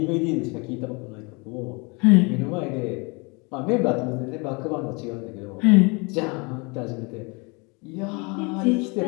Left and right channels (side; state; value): right; quieter; 29.7 dB